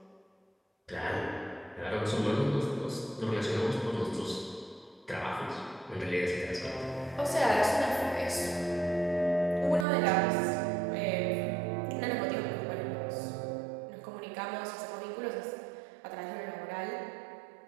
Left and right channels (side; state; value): left; drops out; at 9.9 s